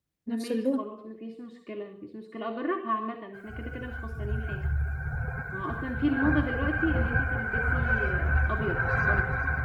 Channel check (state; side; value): identical; both; correlation 1.00